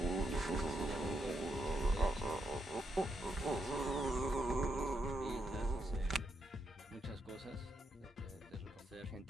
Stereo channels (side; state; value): both; normal; correlation 0.80